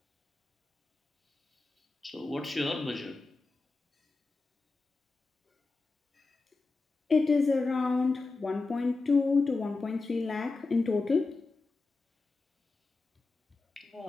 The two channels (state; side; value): quieter; right; 3.7 dB